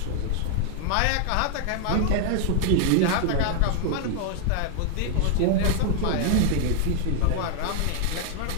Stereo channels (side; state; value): both; different; correlation 0.00